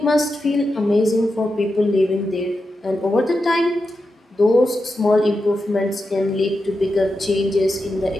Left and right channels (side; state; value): both; normal; correlation 0.89